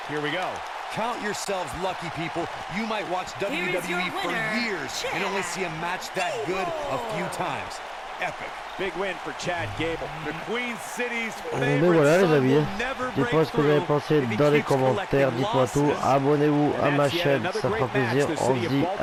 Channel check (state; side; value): identical; both; correlation 1.00